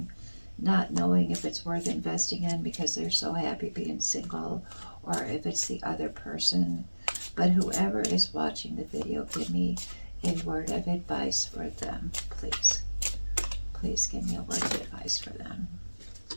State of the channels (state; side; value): inverted; both; correlation -1.00